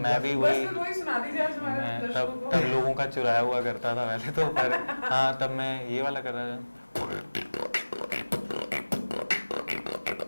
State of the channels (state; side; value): inverted; both; correlation -1.00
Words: भी वही सुना दीजिए आज हमारे मैं दर्शकों को। तब लोगों का चुराया हुआ करता था वैसे तो, पर हाँ तब मैं ये वाला कर रहा था।